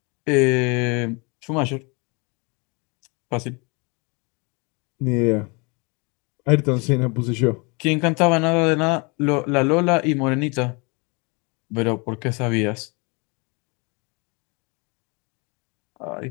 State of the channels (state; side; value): quieter; right; 30.4 dB